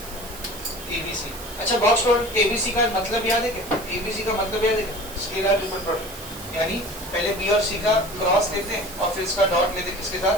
ABC. अच्छा, बॉक्स प्रोडक्ट एबीसी का मतलब याद है क्या? एबीसी का मतलब याद है क्या? स्केलर ट्रिपल प्रोडक्ट, यानी पहले बी और सी का क्रॉस लेते हैं और फिर इसका डॉट लेते हैं, किसके साथ?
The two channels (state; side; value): noise; right; hiss, 14 dB below the sound